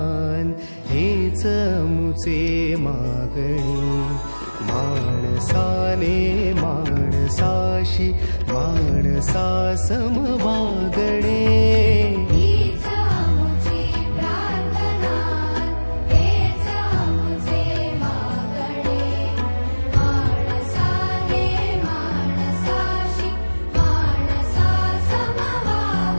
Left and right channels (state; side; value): inverted; both; correlation -1.00